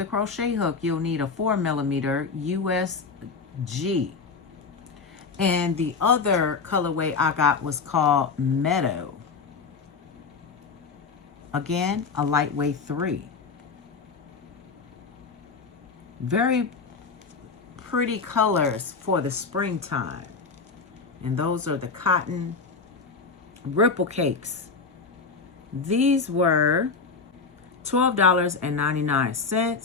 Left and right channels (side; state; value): right; quieter; 4.9 dB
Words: crochet hook, you'll need a 4mm USG. And the other colorway I got was called Meadow. Again, a lightweight 3. Very pretty colors for the springtime. And those are the cotton ripple cakes. These were $12.99.